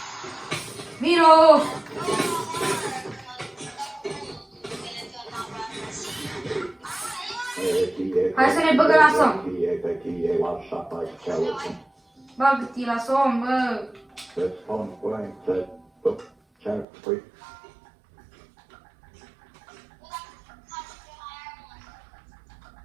Vino! Hai să ne băgăm la somn. Bagă-te la somn, bă!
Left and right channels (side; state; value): left; drops out; at 16.9 s